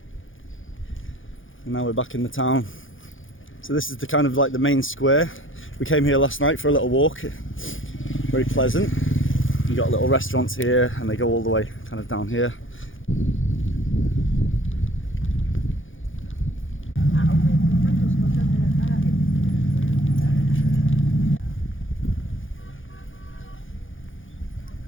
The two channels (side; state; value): right; late; 0.58 ms